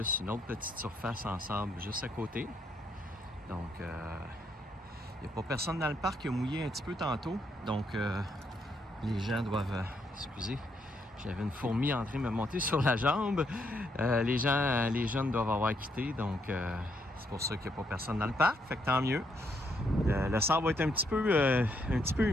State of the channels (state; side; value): normal; both; correlation 0.75